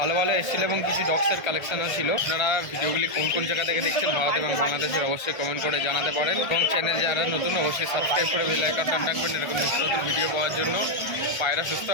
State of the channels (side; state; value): right; late; 1.3 ms